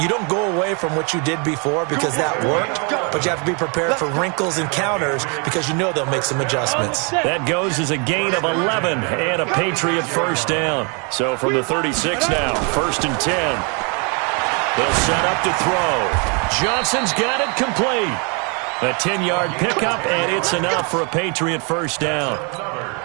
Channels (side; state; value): left; quieter; 34.9 dB